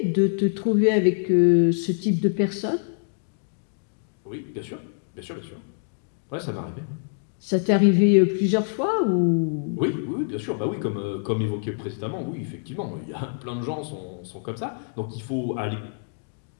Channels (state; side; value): silent; right; digital silence